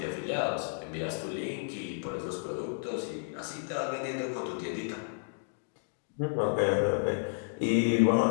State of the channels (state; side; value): silent; right; digital silence